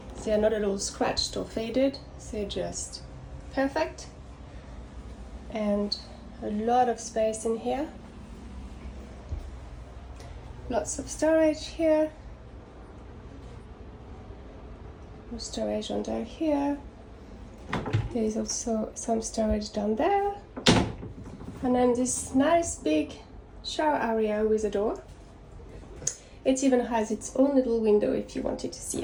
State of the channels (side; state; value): both; identical; correlation 1.00